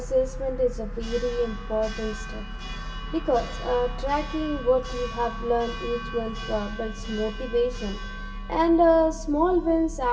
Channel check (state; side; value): identical; both; correlation 1.00